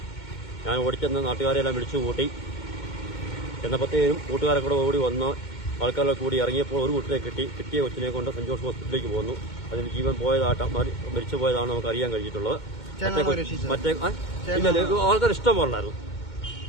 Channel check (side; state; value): right; late; 2.2 ms